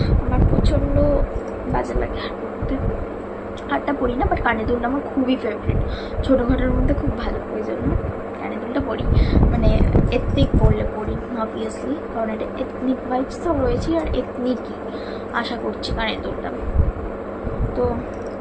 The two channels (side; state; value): both; identical; correlation 1.00